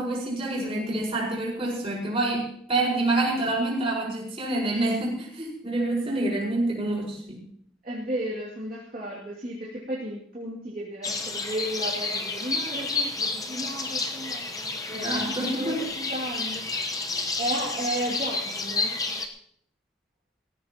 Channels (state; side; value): normal; both; correlation 0.37